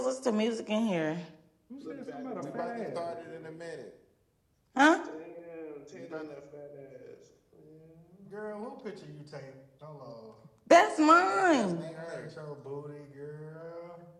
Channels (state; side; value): identical; both; correlation 1.00